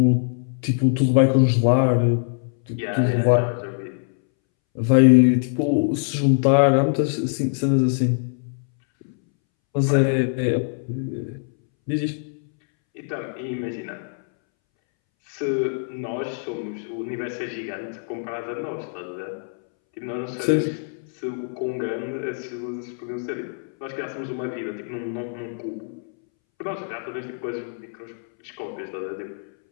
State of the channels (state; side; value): silent; right; 63 dB below the other